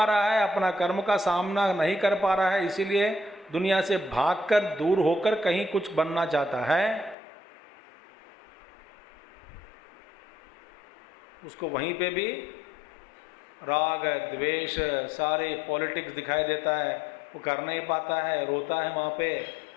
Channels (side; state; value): right; drops out; at 7.2 s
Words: रहा है, अपना कर्म का सामना नहीं कर पा रहा है, इसीलिए दुनिया से भागकर दूर होकर कहीं कुछ बनना चाहता है। उसको वहीं पे भी राग द्वेष सारे पॉलिटिक्स दिखाई देता है, वो कर नहीं पाता है, रोता है वहाँ पे,